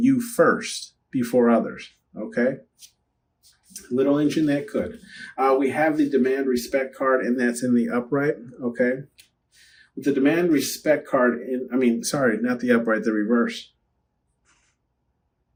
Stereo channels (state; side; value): identical; both; correlation 1.00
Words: you first before others, okay? Little engine that could. We have the demand respect card, and that's in the upright, okay? With the demand respect card, not the upright, the reverse.